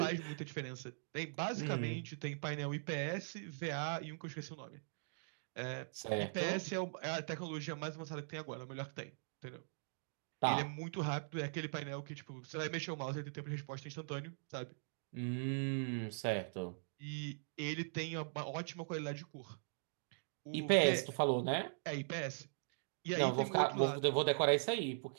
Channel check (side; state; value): left; silent; digital silence